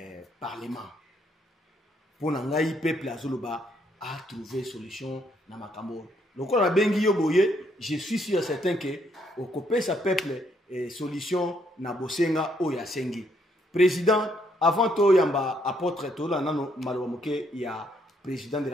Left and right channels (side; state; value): both; normal; correlation 0.72